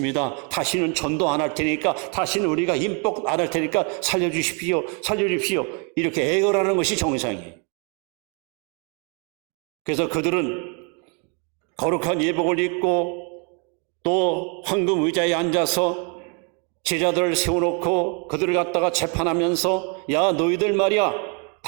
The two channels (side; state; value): left; quieter; 36.4 dB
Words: 다시는 전도 안 할 테니까, 다시는 우리가 임복 안 할 테니까 살려주십시오. 이렇게 애걸하는 것이 정상이에요. 그래서 그들은 거룩한 예복을 입고 또 황금 의자에 앉아서 제자들을 세워놓고 그들을 갖다가 재판하면서 야, 너희들 말이야,